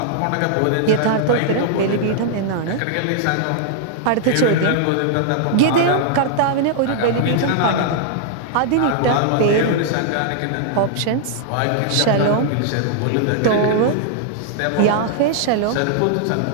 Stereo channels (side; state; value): both; different; correlation -0.01